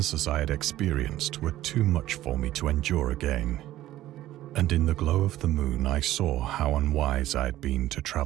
as I had experienced were too much for me to endure again, and in the glow of the moon I saw how unwise I had been to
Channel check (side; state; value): left; quieter; 14.5 dB